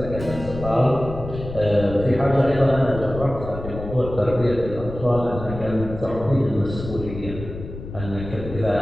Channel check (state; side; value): noise; left; rumble, 10 dB below the sound